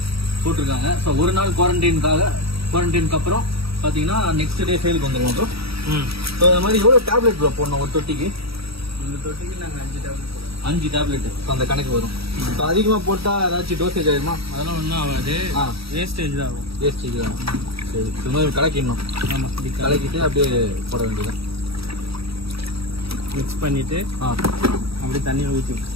போட்டிருக்காங்க. ஸோ ஒரு நாள் குவாரண்டைனுக்கு அப்புறம் பார்த்தீங்கன்னா நெக்ஸ்ட் டே சேலுக்கு வந்துடுவோம் ப்ரோ. ஸோ அது மாதிரி எவ்வளோ டேப்லெட் ப்ரோ போடணும் ஒரு தொட்டிக்கு? இந்த தொட்டிக்கு நாங்கள் 5 டேப்லெட் போடுவோம். 5 டேப்லெட் அந்த கணக்கு வரும். ஸோ அதிகமாக போட்டால் ஏதாச்சும் டோசேஜ் ஆகிடுமா? அதெல்லாம் ஒன்றும் ஆகாது. வேஸ்டேஜ் தான் ஆகும். வேஸ்டேஜ் தான். சரி, இது மாதிரி கலக்கிடணும். ஆமாம், கலக்கிட்டு அப்படியே போட வேண்டியதான். மிக்ஸ் பண்ணிட்டு அப்படியே தண்ணியில் ஊற்றி.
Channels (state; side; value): late; left; 0.77 ms